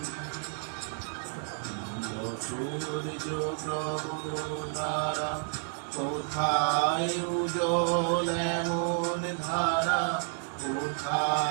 সূর্য প্রভুতারা কোথায় উজ্জ্বল এমন ধারা,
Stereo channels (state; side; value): silent; left; 57 dB below the other